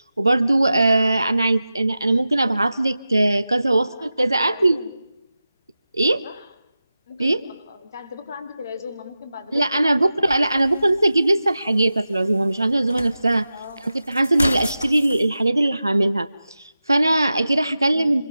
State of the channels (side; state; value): both; inverted; correlation -0.93